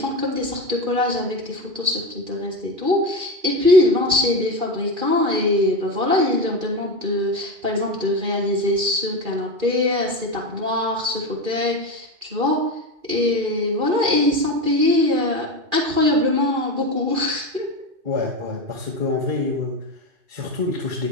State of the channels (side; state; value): left; late; 2.4 ms